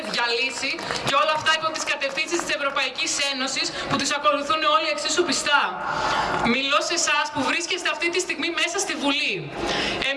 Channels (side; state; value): both; identical; correlation 1.00